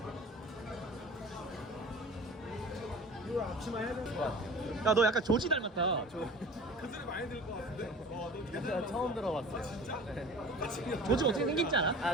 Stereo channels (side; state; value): both; normal; correlation 0.41